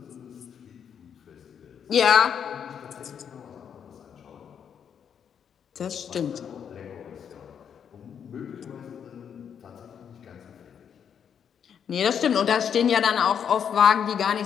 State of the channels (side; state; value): right; quieter; 7.9 dB